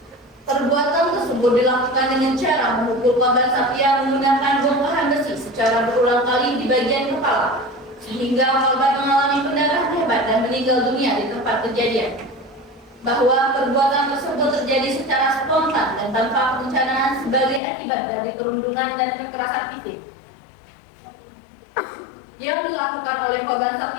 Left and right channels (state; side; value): drops out; right; at 17.6 s